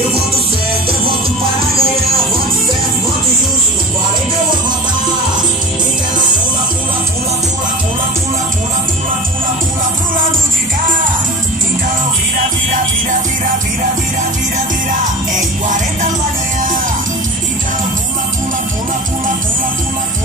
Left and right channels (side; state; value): both; normal; correlation 0.34